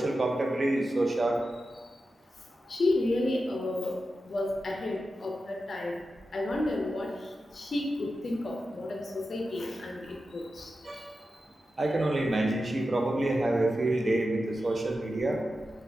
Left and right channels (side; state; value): both; normal; correlation 0.91